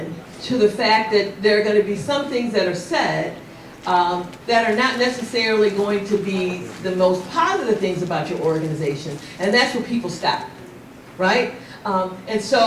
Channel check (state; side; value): identical; both; correlation 1.00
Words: to the fact that there are going to be some things that are said that are not necessarily going to be the most positive things about your organization, and that's where people stop, right? And